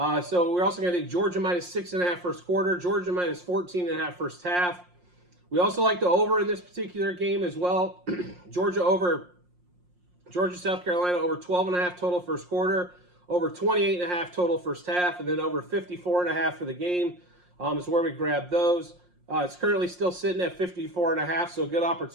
So we're also going to take Georgia minus 6.5 first quarter, Georgia minus 14.5 first half. We also like the over in this particular game as well. Georgia, South Carolina over 12.5 total first quarter, over 28.5 total first half, and then over 54.5 for the game is where we grab those. It's currently still sitting at 54.5, so a good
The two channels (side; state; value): left; late; 5.6 ms